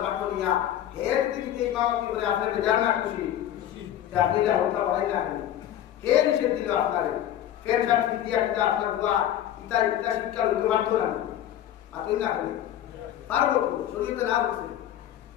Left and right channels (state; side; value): quieter; right; 11.5 dB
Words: মাঠ নিয়া হের দিন যে ইমামতি করে আপনি বেদার না খুশি আপনি যা হত্যা বাড়াই না কে নিষেধ দিল আপনারে কে শান্তি দিয়া দিলে আপনার বুয়া ইতা শিক্ষা লইতে পারতো না আপনি না করেন পারবো শরীয়তে না বলছে